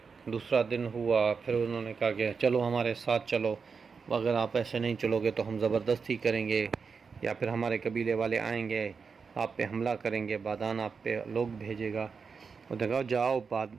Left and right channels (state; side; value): quieter; left; 5.4 dB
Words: دوسرا دن ہوا، پھر انہوں نے کہا کہ چلو ہمارے ساتھ چلو، اگر آپ ایسے نہیں چلو گے تو ہم زبردستی کریں گے، یا پھر ہمارے قبیلے والے آئیں گے آپ پہ حملہ کریں گے، بادان آپ پہ لوگ بھیجے گا۔ اور دیکھو جاؤ،